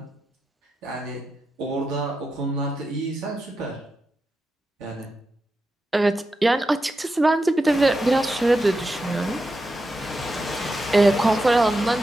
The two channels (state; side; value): normal; both; correlation 0.89